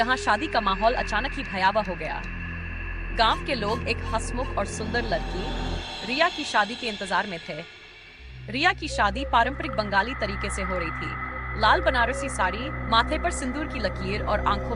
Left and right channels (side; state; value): both; identical; correlation 1.00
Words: शादी का माहौल अचानक ही भयावह हो गया। गांव के लोग एक हंसमुख और सुंदर लड़की रिया की शादी के इंतजार में थे। रिया की शादी पारंपरिक बंगाली तरीके से हो रही थी। लाल बनारसी साड़ी, माथे पर सिंदूर की लकीर और आंखों